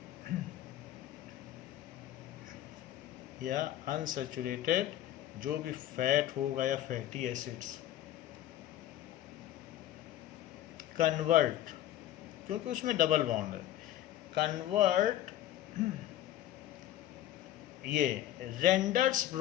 या अनसैचुरेटेड जो भी फैट होगा या फैटी एसिड्स। कन्वर्ट, क्योंकि उसमें डबल बॉन्ड है, कन्वर्ट, ये renders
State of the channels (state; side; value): quieter; right; 12.9 dB